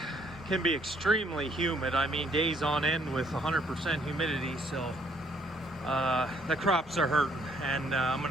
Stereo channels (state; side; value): normal; both; correlation 0.67